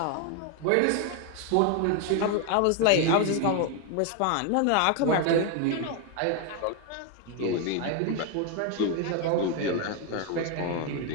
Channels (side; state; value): both; different; correlation 0.01